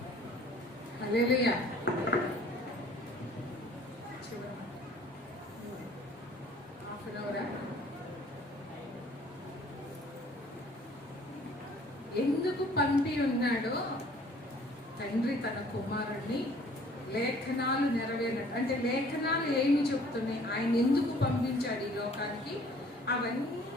హల్లెలూయా. ఎందుకు పంపి ఉన్నాడో తండ్రి తన కుమారుణ్ణి లేఖనాలు నెరవేరినట్టు. అంటే లేఖనాలు ఏమి చెప్తున్నాయి, ఆయన ఎందుకు పంపించాడు ఈ లోకానికి,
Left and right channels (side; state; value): both; normal; correlation 0.55